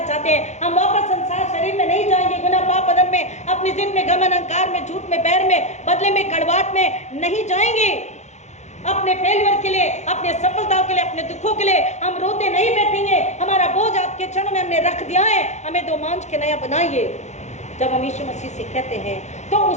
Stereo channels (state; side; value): late; right; 0.33 ms